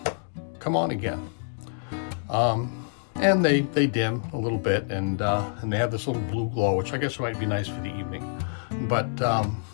come on again. And they dim a little bit, and they have this little blue glow, which I guess might be nice for the evening. But,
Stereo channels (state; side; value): silent; right; digital silence